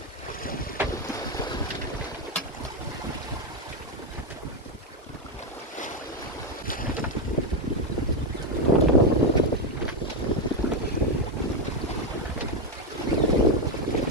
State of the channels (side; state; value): both; normal; correlation 0.07